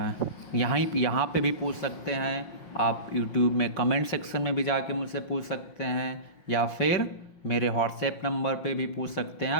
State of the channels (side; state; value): right; late; 5.6 ms